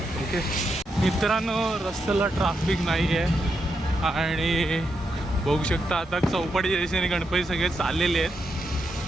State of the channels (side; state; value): both; normal; correlation 0.83